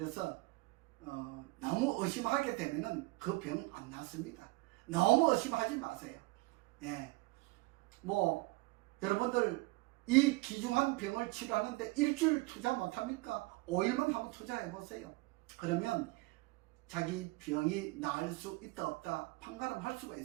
너무 의심하게 되면은 그 병은 안 낫습니다. 너무 의심하지 마세요. 여러분들 이 귀중한 병을 치료하는데 일주일 투자 못합니까? 5일만 한번 투자해 보세요. 그러면 자기 병이 나을 수 있다 없다 판가름할 수가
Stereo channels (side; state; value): left; quieter; 23.1 dB